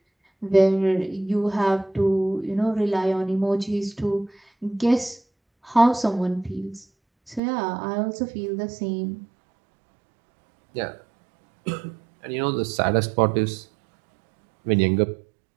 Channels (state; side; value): drops out; left; at 7.4 s